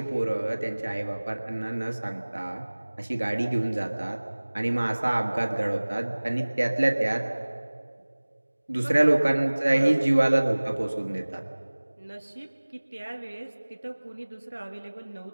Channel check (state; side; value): inverted; both; correlation -1.00